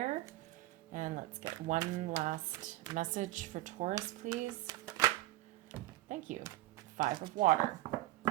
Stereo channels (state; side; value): quieter; left; 17.4 dB